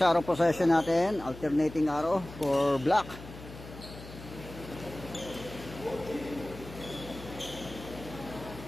arrow possession natin, alternating arrow for black.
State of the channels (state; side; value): noise; left; hum, 15 dB below the sound